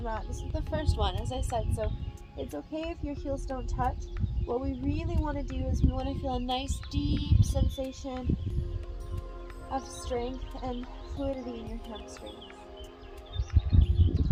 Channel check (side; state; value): both; identical; correlation 1.00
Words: mat. This is the first one, as I said, so it's okay if your heels don't touch. What we really want to do is we want to feel a nice deep sensation of strength and fluidity in your hamstrings.